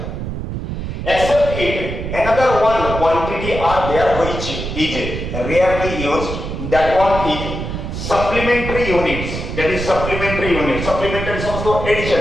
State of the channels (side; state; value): right; noise; rumble, 5 dB below the sound